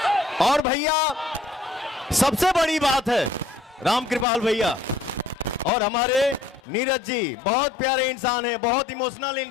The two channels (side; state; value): right; drops out; at 6.6 s